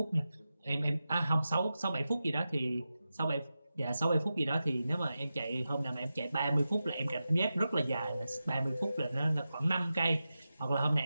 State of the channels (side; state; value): both; inverted; correlation -0.92